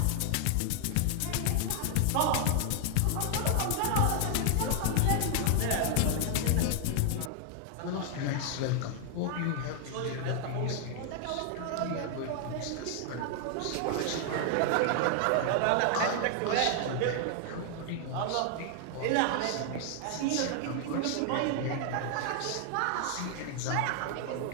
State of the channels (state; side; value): different; both; correlation 0.00